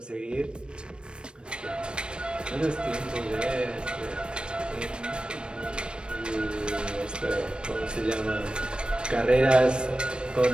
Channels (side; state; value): left; late; 0.054 ms